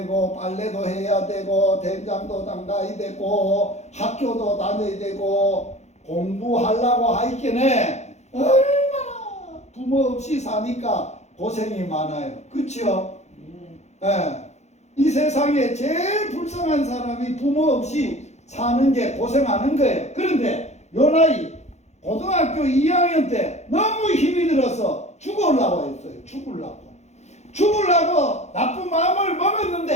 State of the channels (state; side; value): late; right; 0.33 ms